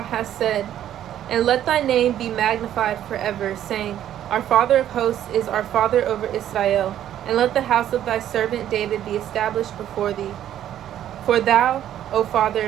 hast said, and let thy name be magnified forever, saying, Our Father of hosts is our Father over Israel. And let the house of thy servant David be established before thee. For thou, O Father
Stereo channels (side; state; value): left; quieter; 11.3 dB